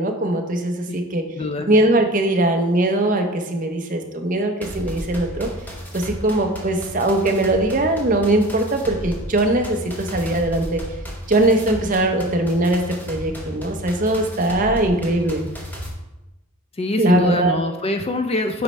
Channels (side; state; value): both; normal; correlation 0.39